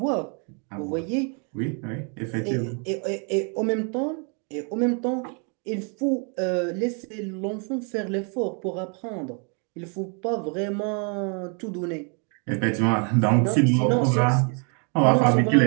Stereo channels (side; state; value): left; quieter; 37.6 dB